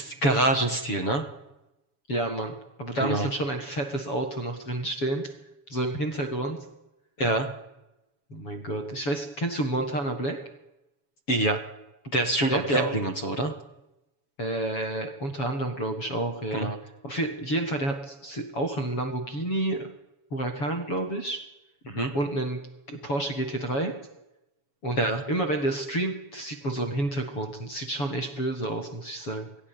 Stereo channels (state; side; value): late; right; 7.1 ms